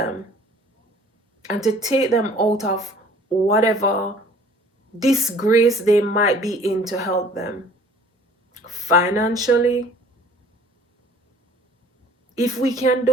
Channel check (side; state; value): both; normal; correlation 0.52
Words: and to take them out of whatever disgrace they might be in, to help them financially. If we can